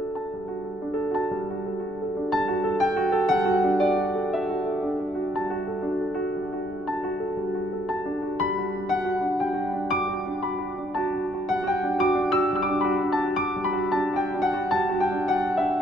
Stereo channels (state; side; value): noise; left; rumble, 25 dB below the sound